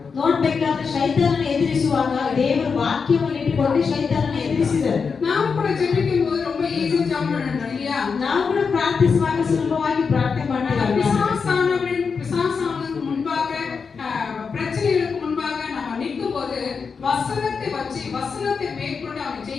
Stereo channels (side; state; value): right; quieter; 5.5 dB